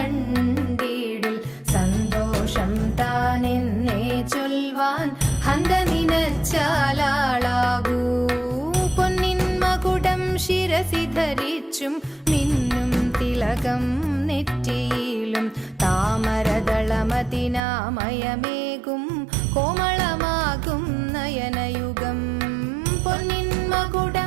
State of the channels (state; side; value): drops out; left; at 17.6 s